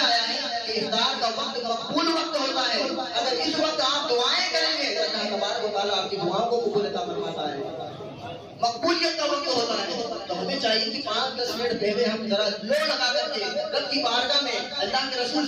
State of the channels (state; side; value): identical; both; correlation 1.00